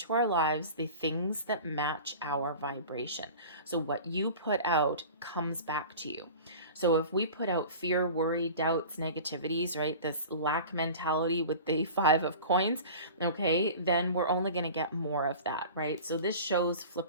our lives the things that match our vibration. So what you put out comes back to you. So if we put out fear, worry, doubts, negativities, right, this lack mentality with the 5 of coins, okay, then we're only going to get more of that, right? So this shows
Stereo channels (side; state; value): both; inverted; correlation -0.38